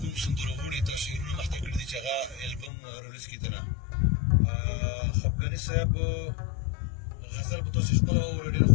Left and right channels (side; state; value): right; drops out; at 2.7 s